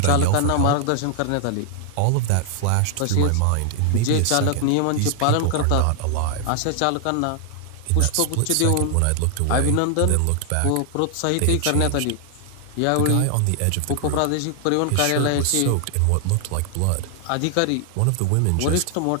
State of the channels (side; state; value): both; different; correlation 0.00